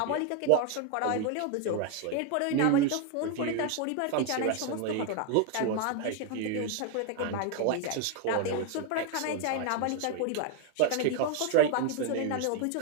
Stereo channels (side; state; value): both; different; correlation 0.01